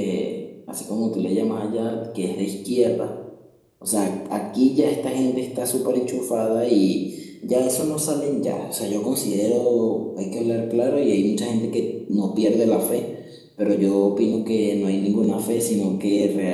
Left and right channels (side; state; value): both; identical; correlation 1.00